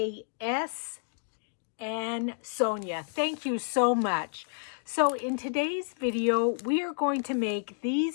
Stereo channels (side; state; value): right; silent; digital silence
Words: and Sonia. Thank you so much. So in today's video, we are going to make